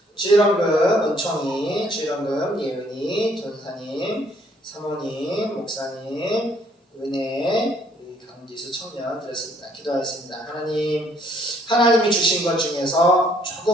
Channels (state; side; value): normal; both; correlation 0.64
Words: 주일원금 은총이, 주일원금 예은이, 전사님, 사모님, 목사님, 은혜, 우리 강지수 청년 드렸습니다. 기도하겠습니다. 하나님이 주신 것 중에서